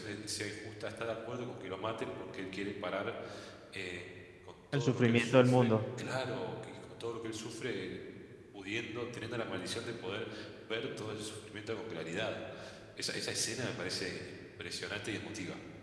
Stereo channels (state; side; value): identical; both; correlation 1.00